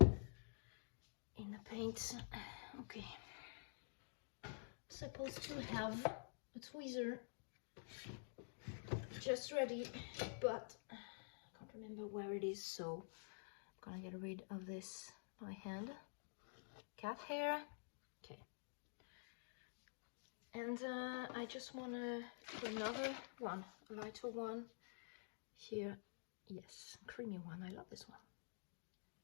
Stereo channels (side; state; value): right; silent; digital silence